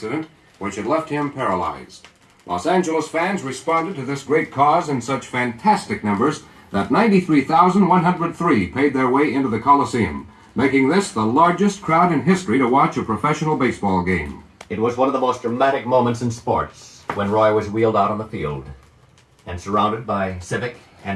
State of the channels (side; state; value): both; identical; correlation 1.00